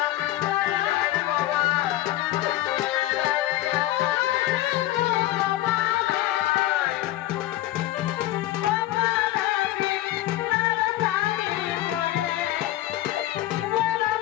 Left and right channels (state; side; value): quieter; right; 15.2 dB